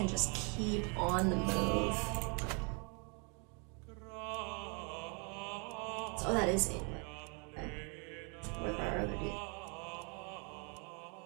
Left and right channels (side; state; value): left; quieter; 35.6 dB